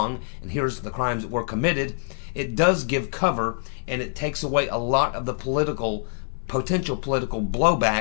and here's the crimes that were committed, it does give cover, and it takes away a lot of the potential political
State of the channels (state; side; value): silent; right; digital silence